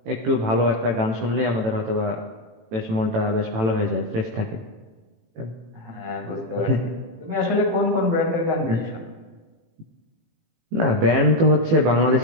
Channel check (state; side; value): late; left; 18 ms